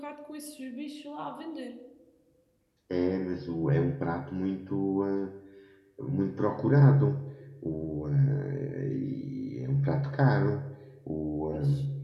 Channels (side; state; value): both; identical; correlation 1.00